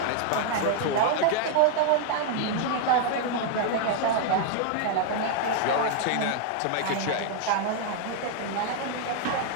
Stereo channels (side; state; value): both; different; correlation 0.00